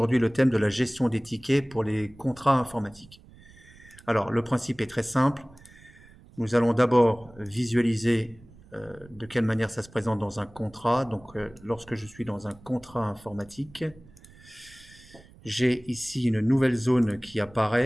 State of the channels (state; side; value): noise; right; rumble, 24 dB below the sound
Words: le thème de la gestion des tickets pour les contrats informatiques. Alors, le principe est très simple. Nous allons d'abord visualiser de quelle manière ça se présente dans un contrat. Donc, lorsque je suis dans un contrat informatique, j'ai ici une nouvelle zone qui